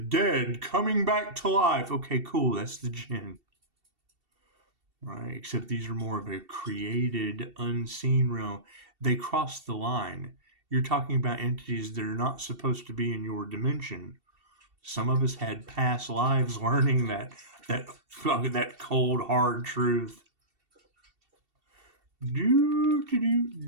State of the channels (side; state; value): left; late; 2.7 ms